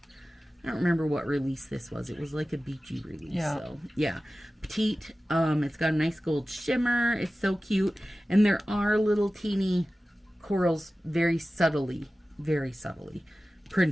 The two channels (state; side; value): normal; both; correlation 0.96